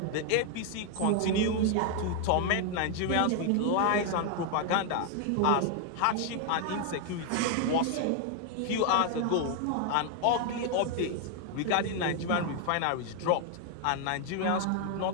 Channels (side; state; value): both; different; correlation 0.00